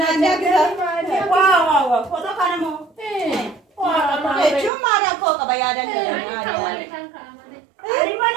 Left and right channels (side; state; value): left; drops out; at 4.7 s